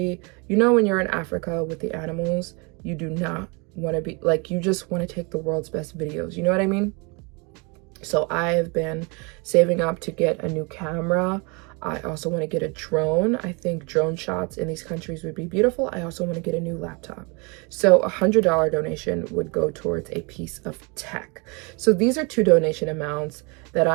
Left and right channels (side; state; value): left; quieter; 30.7 dB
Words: You know, when you're in Africa with the animals, you do not want to be like, you just want to take the world's best videos. You know what I mean? So I have been saving up to get a new camera. I also want to get a drone. I think drone shots in these countries would be beautiful. I also want to get a new laptop. So $100 donation would go towards a piece of tech. So these are two donation amounts that